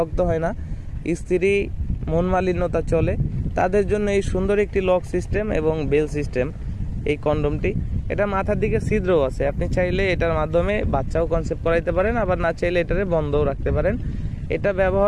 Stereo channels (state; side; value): identical; both; correlation 1.00